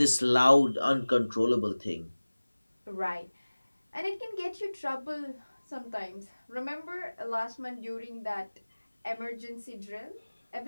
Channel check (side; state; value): both; inverted; correlation -1.00